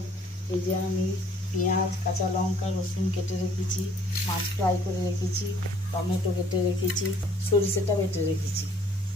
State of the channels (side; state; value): both; normal; correlation 0.59